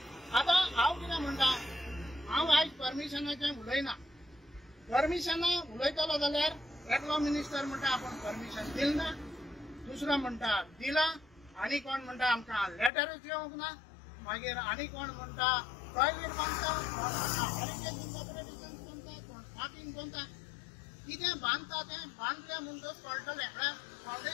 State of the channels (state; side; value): drops out; right; at 12.9 s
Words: आतां हांव कितें म्हणटा, हांव आयज परमिशनाचें उलयना. परमिशनां उलयतलो जाल्यार एकलो मिनिस्टर म्हणटा आपूण परमिशन दिल ना, दुसरो म्हणटा दिला, आनी कोण म्हणटा आमकां लेटरूच येवंक ना, मागीर आनी कोण म्हणटा टॉयलेट बांदता, पार्किंग बांदता. कितें बांदता तें बांदलें म्हणटच कळटलें. म्हळ्यार